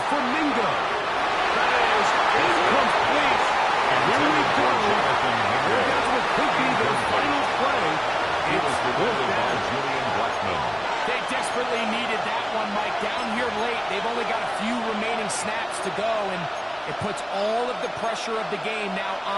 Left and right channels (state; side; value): identical; both; correlation 1.00